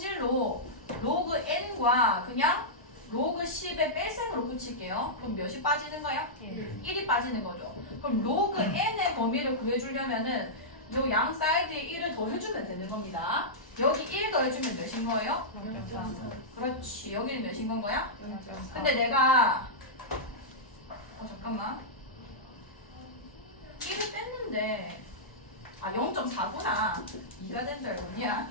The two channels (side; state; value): right; late; 1.0 ms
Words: 로그 n과 그냥 로그 10의 뺄셈으로 붙일게요. 그럼 몇이 빠지는 거야? 1이 빠지는 거죠. 그럼 로그 n의 범위를 구해주려면은 요 양 사이드에 1을 더해주면 되는 겁니다. 여기 1 더해주면 몇인 거예요? 그렇지. 여기는 몇인 건 거야? 근데 내가 잠깐만 1을 뺐는데 0.4구나 2가 된 줄 알고